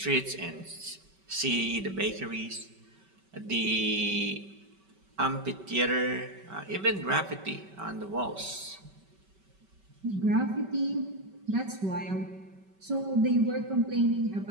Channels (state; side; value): late; left; 5.2 ms